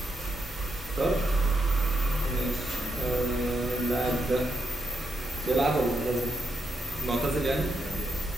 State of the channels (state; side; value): normal; both; correlation 0.82